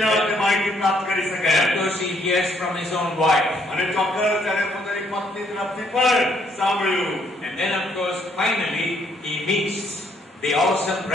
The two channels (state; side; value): normal; both; correlation 0.68